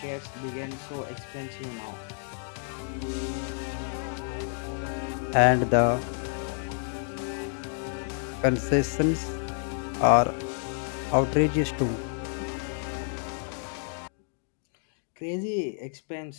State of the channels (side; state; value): right; silent; 58 dB below the other